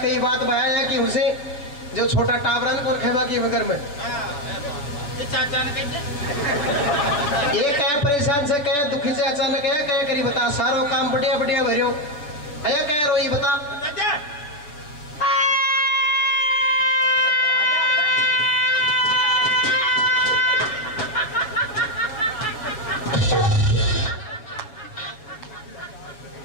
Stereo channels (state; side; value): late; right; 7.0 ms